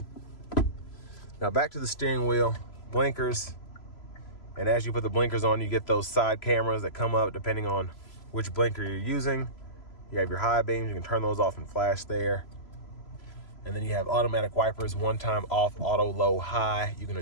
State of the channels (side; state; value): right; late; 3.0 ms